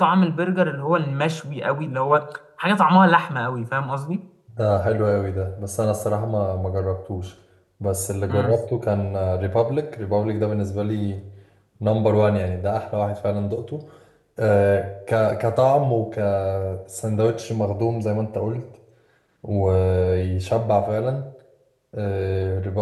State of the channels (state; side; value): identical; both; correlation 1.00